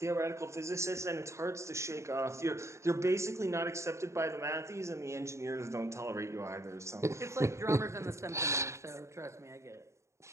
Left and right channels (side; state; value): left; late; 0.14 ms